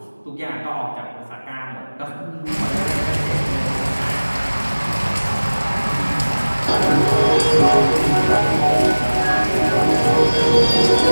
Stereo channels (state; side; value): inverted; both; correlation -1.00